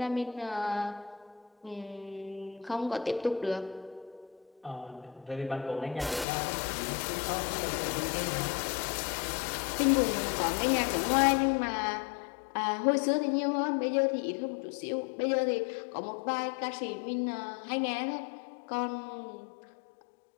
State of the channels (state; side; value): drops out; right; at 6.2 s